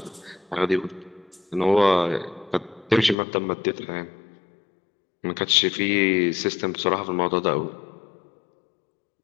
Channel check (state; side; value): drops out; right; at 3.2 s